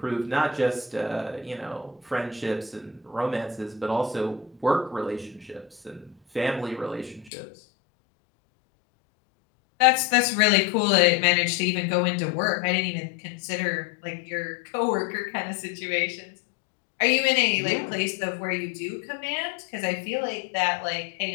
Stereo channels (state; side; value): drops out; right; at 7.3 s